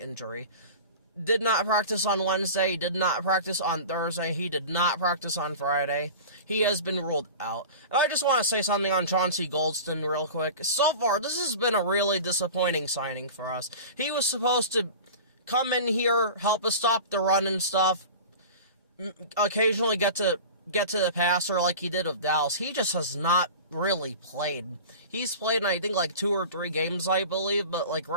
Did not practice on Wednesday, did not practice on Thursday, he did not practice on Friday. He has been ruled out. And I just want to say something on Chauncey Golston real quick. So far, this has been a really disappointing signing for us. He was supposed to come in here, help us stop the run and stuff, occasionally get to the passer like he did with Dallas. He just has not really played. He's played in, I think, 2 or 3 games, I believe, but,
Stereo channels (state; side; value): inverted; both; correlation -0.35